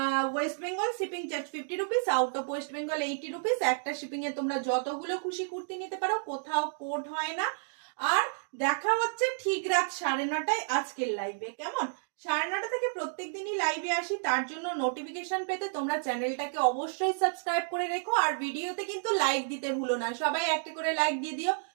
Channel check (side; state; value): left; silent; digital silence